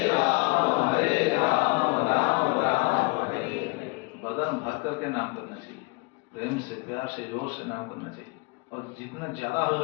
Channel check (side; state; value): right; quieter; 28.6 dB